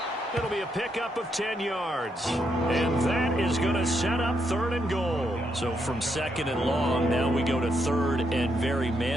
It'll be a pickup of 10 yards. And that is going to set up 3rd and goal. So from 2nd and long, now we go to 3rd and very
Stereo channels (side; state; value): both; normal; correlation 0.79